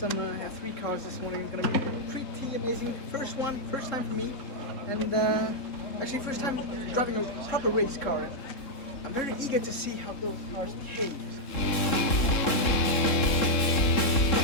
F3 cars this morning. It's gonna be pretty amazing. First time for me, and actually first time driving a proper race car. I'm very eager to see how those cars behave.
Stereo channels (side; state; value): right; late; 3.7 ms